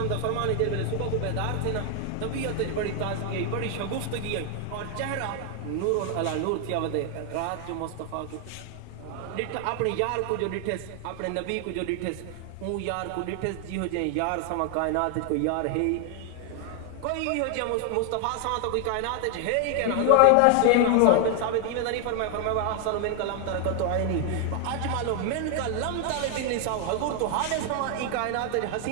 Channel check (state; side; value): different; both; correlation 0.00